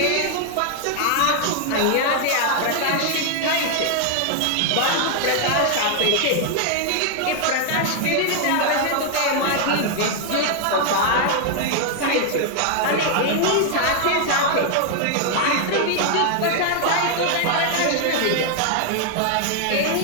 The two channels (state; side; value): different; both; correlation 0.00